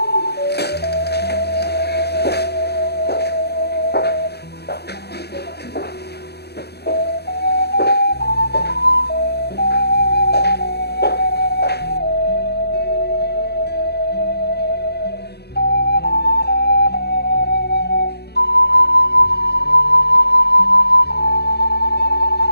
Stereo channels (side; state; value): right; late; 0.48 ms